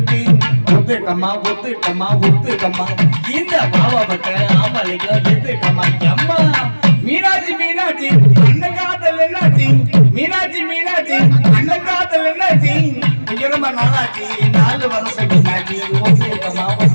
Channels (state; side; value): inverted; both; correlation -1.00